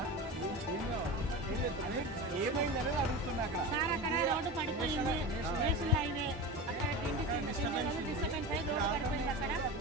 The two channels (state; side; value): normal; both; correlation 0.27